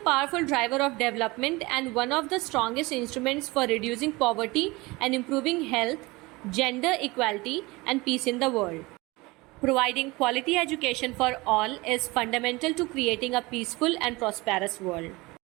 powerful driver of development and one of the strongest instruments for reducing poverty and improving health, gender equality and peace in the world. Providing quality education for all is fundamental to creating a peaceful and prosperous world.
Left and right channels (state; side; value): quieter; left; 22.8 dB